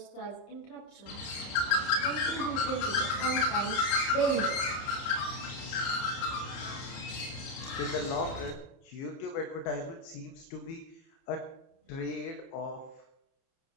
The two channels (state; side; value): late; right; 30 ms